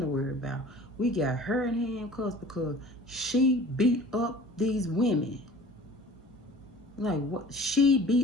worry about. We got her in handcuffs because she beat up these women. Like, what? She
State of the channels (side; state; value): both; normal; correlation 0.45